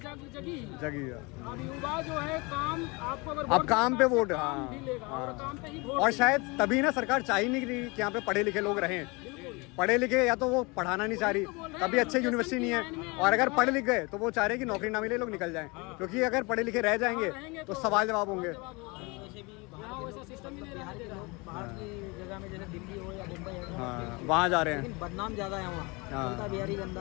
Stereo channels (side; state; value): right; quieter; 27.2 dB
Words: जगी जगी अब युवा जो है काम आपको अगर अब काम पे वोट, काम भी लेगा और काम पे ही वोट और शायद तभी ना सरकार चाह ही नहीं रही कि यहाँ पे पढ़े लिखे लोग रहें। पढ़े लिखे या तो वो पढ़ाना नहीं चाह रही, तभी अच्छे यूनिवर्सिटी नहीं है, और अगर पढ़े लिख गए तो वो चाह रहे कि नौकरी ना मिले, लोग निकल जाएं। क्योंकि अगर पढ़े लिखे रह जाएंगे तो सवाल जवाब होंगे। वैसे भी बिहार के लोग बाहर की जगह में जैसे दिल्ली हो या मुंबई हो, हाँ, वहाँ जा रहे हैं। लेकिन बदनाम ज़्यादा है वहाँ। बोलता बिहारी